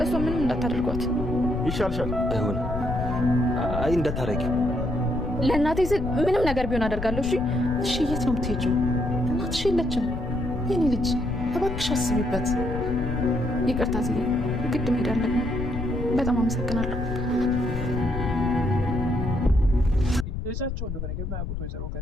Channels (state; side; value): noise; left; rumble, 5 dB below the sound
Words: እሷ ምንም እንዳታደርጓት ይሻልሻል። አይሆን አይ እንዳታረጊው። ለእናቴ ስል ምንም ነገር ቢሆን አደርጋለሁ። እሺ እሺ የት ነው የምትሄጂው? እናትሽ የለችም። የኔ ልጅ እባክሽ አስቢበት። ይቅርታ ዝዬ ግድ መሄድ አለብኝ። በጣም አመሰግናለሁ። ልጃቸው እንደሆነ የማያውቁት ወይዘሮ